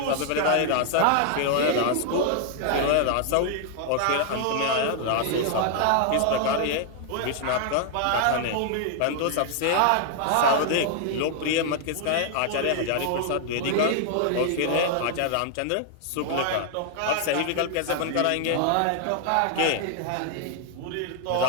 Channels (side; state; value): both; different; correlation 0.00